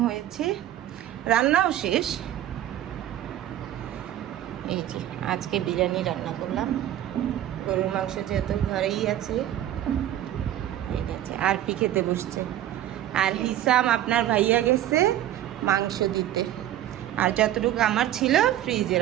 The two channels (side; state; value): left; quieter; 12.6 dB